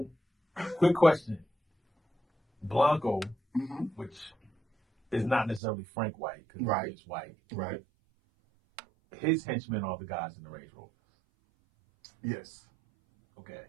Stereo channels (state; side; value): drops out; left; at 5.6 s